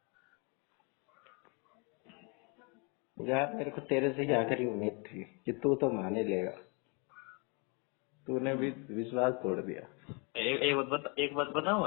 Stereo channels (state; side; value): quieter; right; 33.4 dB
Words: यार मेरे को तेरे से ही आखिरी उम्मीद थी कि तू तो मान ही लेगा, तूने भी विश्वास तोड़ दिया। एक बात बताऊं